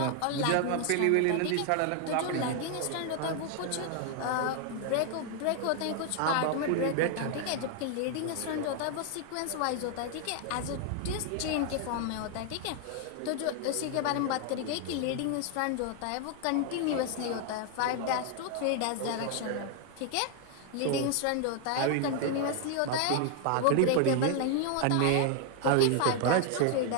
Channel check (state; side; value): different; both; correlation 0.00